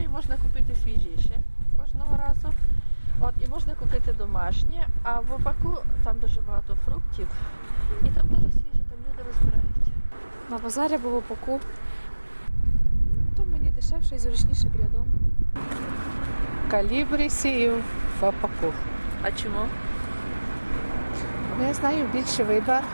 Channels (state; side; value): inverted; both; correlation -1.00